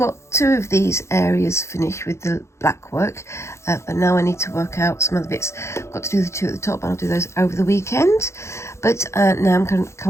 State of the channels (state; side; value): late; right; 0.13 ms